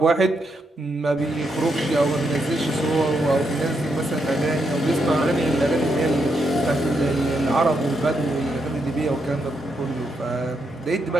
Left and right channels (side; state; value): both; normal; correlation 0.80